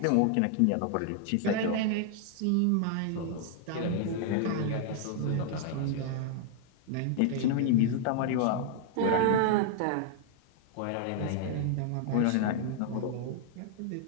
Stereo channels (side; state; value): both; different; correlation 0.00